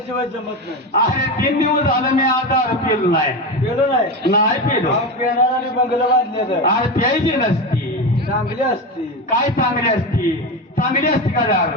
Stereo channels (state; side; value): normal; both; correlation 0.19